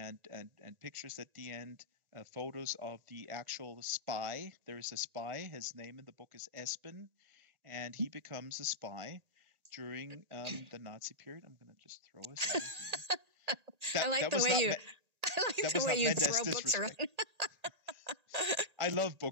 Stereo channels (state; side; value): late; left; 1.8 ms